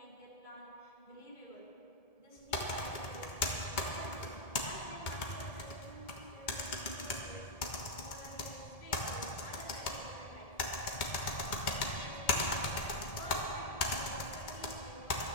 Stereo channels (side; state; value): right; late; 1.7 ms